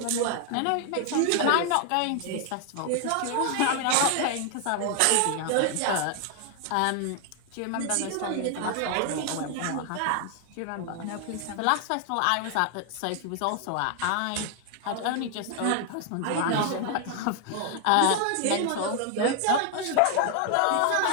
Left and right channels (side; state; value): both; different; correlation 0.00